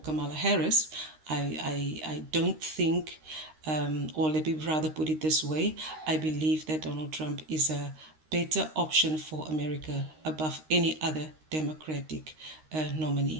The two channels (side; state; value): left; late; 13 ms